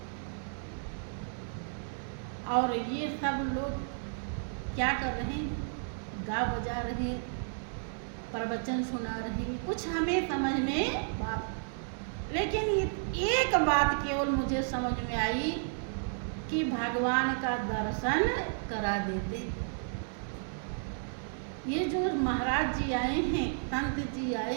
और ये सब लोग क्या कर रहे हैं, गा बजा रहे, प्रवचन सुना रहे, कुछ हमें समझ में बात। लेकिन एक बात केवल मुझे समझ में आई कि भगवान का दर्शन करा देते। ये जो महाराज जी आए हैं, संत जी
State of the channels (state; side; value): silent; left; digital silence